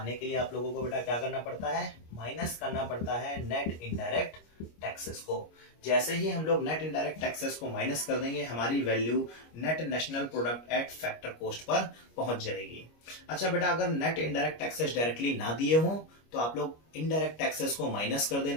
के लिए आप लोगों को बेटा क्या करना पड़ता है? माइनस करना पड़ता है नेट इनडायरेक्ट टैक्सेस को। जैसे ही हम लोग नेट इनडायरेक्ट टैक्सेस को माइनस कर देंगे, हमारी value net national product at factor cost per पहुंच जाएगी। अच्छा बेटा, अगर नेट इनडायरेक्ट टैक्सेस डायरेक्टली ना दिए हों तो आप लोग इनडायरेक्ट टैक्सेस को माइनस कर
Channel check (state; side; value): late; right; 25 ms